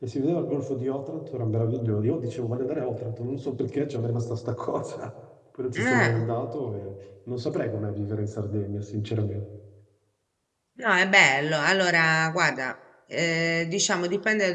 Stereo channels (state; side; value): identical; both; correlation 1.00